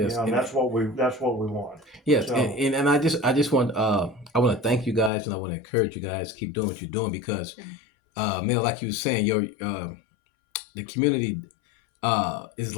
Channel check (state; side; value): drops out; right; at 5.1 s